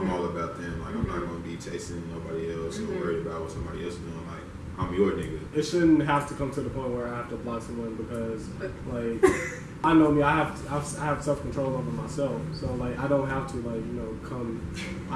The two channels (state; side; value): identical; both; correlation 1.00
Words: all about them. Like I'm not gonna be chasing nobody else or worried about what somebody else is doing. Like I'm your nigga. It shouldn't have to come to the point where I have to block someone because, like, I know me. I have self control over myself, so like I don't have to like come.